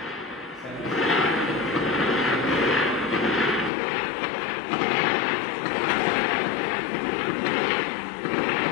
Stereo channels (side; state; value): right; drops out; at 3.7 s